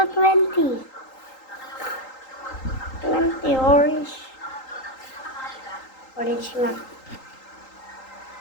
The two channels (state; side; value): late; right; 3.8 ms